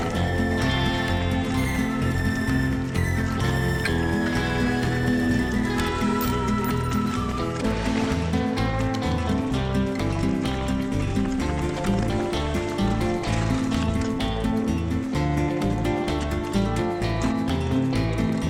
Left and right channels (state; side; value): identical; both; correlation 1.00